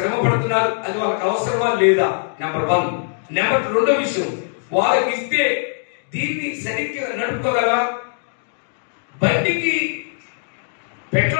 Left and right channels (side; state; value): right; silent; digital silence